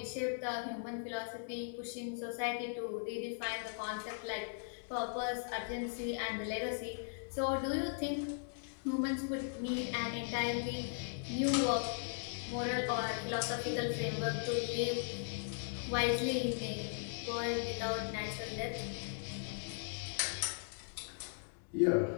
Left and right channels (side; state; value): right; silent; digital silence